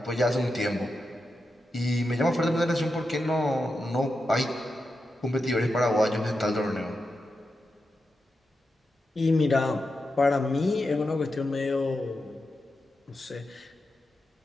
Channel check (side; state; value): both; normal; correlation 0.88